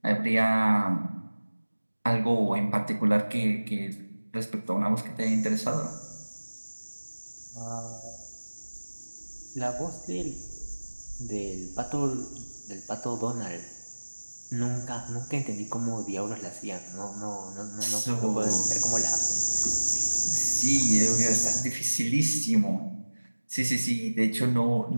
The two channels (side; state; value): both; inverted; correlation -1.00